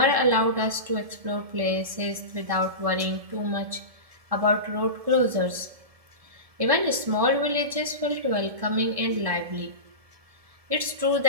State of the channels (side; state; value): left; late; 1.7 ms